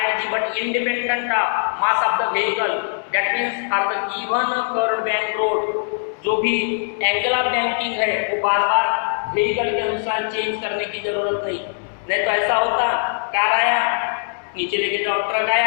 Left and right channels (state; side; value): silent; right; digital silence